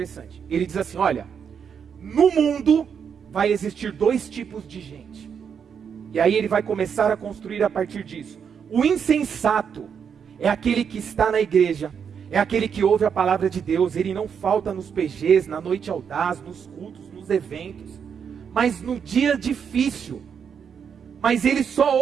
Ele diz assim, olha, no mundo vai existir dois tipos de gente. E aí ele vai começar a construir a partir disso. O insensato é aquele que está na igreja, é aquele que ouve a palavra de Deus, ele não falta nos PGs, na noite audaz, nos cultos, nos eventos, mas no dia difícil. Mas ele só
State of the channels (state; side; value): quieter; left; 7.2 dB